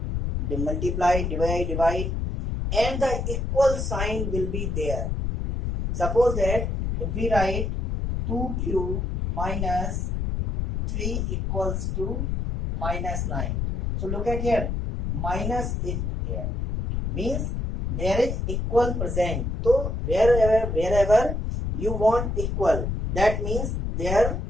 multiply, divide, and the equal sign will be there. Suppose that if we write 2q minus 3 equals to minus 9. So look at here, minus is there, means there is equal present. So wherever you want equal, that means there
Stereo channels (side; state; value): left; noise; rumble, 1 dB below the sound